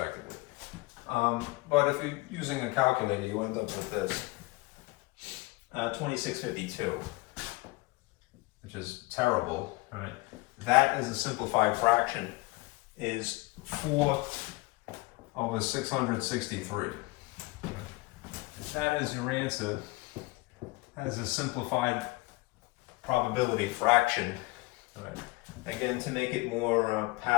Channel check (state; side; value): quieter; right; 23.1 dB